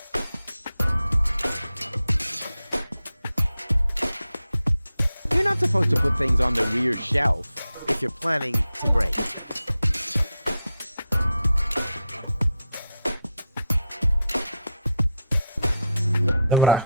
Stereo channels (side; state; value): both; inverted; correlation -0.82